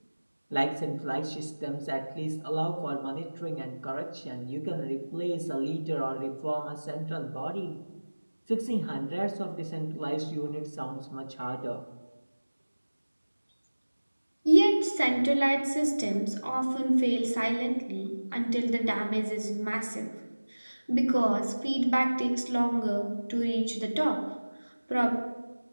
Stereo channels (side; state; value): both; inverted; correlation -1.00